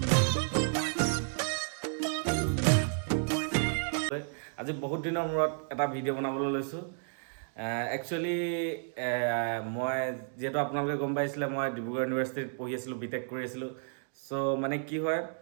আজি বহুত দিনৰ মূৰত এটা ভিডিঅ' বনাবলৈ লৈছোঁ। একচুৱেলি মই যিহেতু আপোনালোকে গম পাইছিলে মই ডিব্ৰুগড় ইউনিভাৰ্চিটিত পঢ়ি আছিলোঁ, বিটেক কৰি আছিলোঁ। চ' মানে কি হয়,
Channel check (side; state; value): left; silent; digital silence